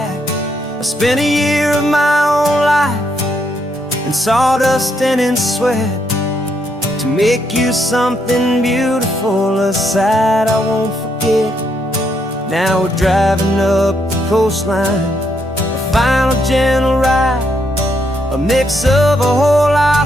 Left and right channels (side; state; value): both; normal; correlation 0.76